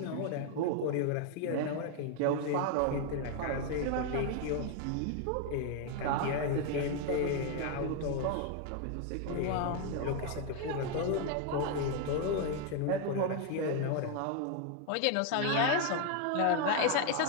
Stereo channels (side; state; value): both; different; correlation 0.01